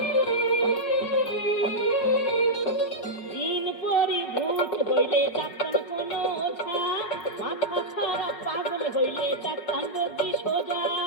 দিন পরি ভূত হইলে ডাক্তার কোন ওঝা, মাথা খারাপ পাগল হইলে ডাক্তার রোগী সোজা।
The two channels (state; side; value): late; right; 5.4 ms